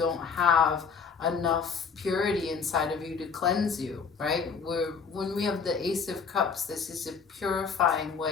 have enough purity inside of you to cleanse you, right? When we have the Ace of Cups, this is a purifying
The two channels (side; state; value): right; quieter; 5.8 dB